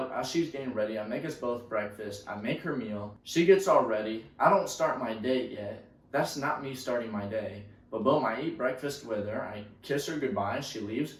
as she's getting ready, I make us both breakfast, I make her meal, she gets all ready. I don't start my day yet. That's not me starting my day. But boom, I eat breakfast with her, I kiss her goodbye, she leaves.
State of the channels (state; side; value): identical; both; correlation 1.00